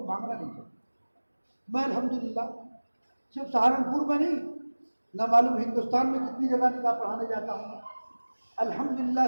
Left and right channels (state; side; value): inverted; both; correlation -1.00